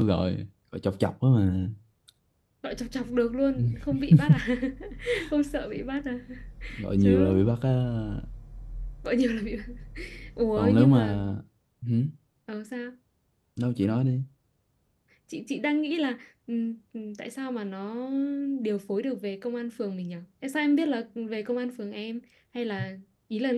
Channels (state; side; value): identical; both; correlation 1.00